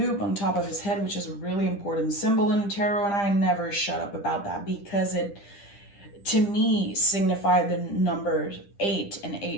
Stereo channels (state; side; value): late; right; 10 ms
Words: on top of his head, which is a really important symbol in tarot, and I never shut up about that because to me signify the number 8, and